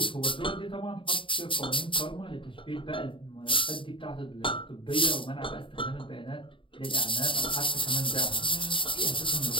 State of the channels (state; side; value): late; right; 0.25 ms